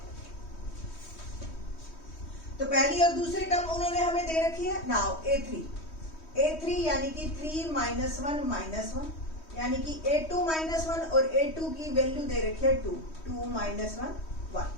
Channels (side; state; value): right; late; 3.1 ms